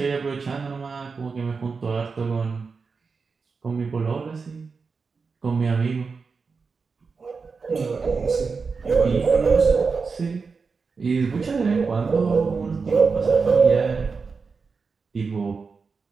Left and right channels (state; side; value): quieter; left; 4.9 dB